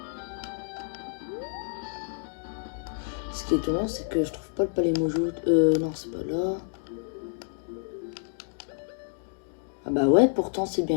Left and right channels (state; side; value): silent; right; digital silence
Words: Ce qui est étonnant, c'est que je trouve pas le palais Mojo. Non, c'est pas là. Ah bah ouais, pourtant c'est